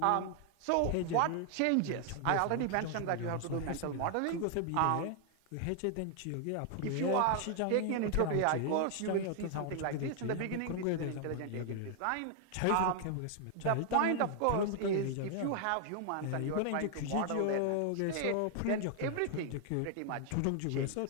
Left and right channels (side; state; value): both; different; correlation 0.00